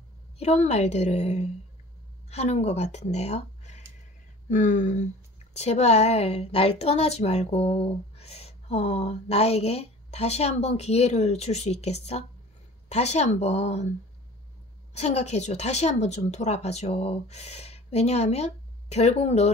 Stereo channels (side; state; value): both; normal; correlation 0.44